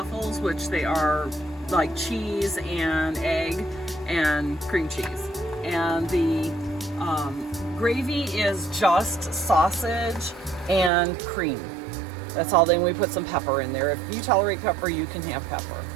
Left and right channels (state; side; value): drops out; left; at 10.9 s